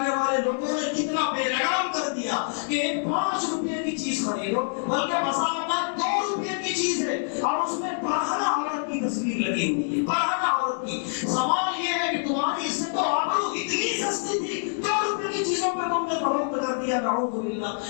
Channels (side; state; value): right; silent; 61 dB below the other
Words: والے لوگوں نے کتنا بے لگام کر دیا کہ 5 روپے کی چیز خریدو، بلکہ مساوات 2 روپے کی چیز ہے اور اس میں برہنہ عورت کی تصویر لگی ہوئی ہے، برہنہ عورت کی. سوال یہ ہے کہ تمہاری عزت و آبرو اتنی سستی تھی، 2 روپے کی چیزوں پہ تم نے فروخت کر دیا. نعوذ باللہ.